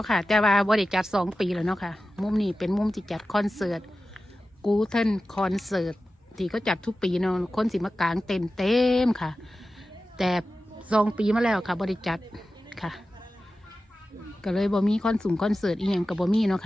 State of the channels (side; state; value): both; normal; correlation 0.94